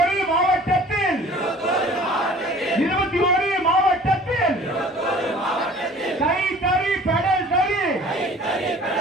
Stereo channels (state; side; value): normal; both; correlation 0.48